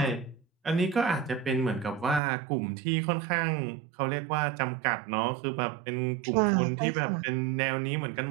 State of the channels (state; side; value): drops out; left; at 2.2 s